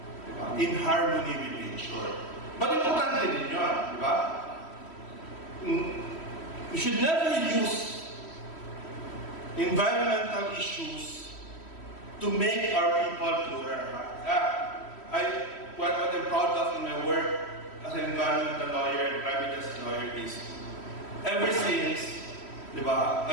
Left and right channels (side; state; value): right; late; 3.1 ms